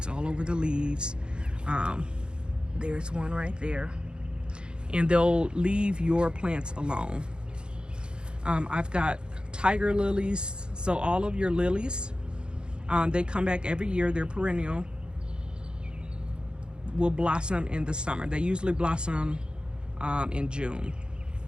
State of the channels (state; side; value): late; left; 0.051 ms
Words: all over the leaves. There's one right there. And they'll leave your plants alone. I've got tiger lilies. So all of your lilies, they come back every year. They're perennial. Will blossom in the summer. They usually blossom in June.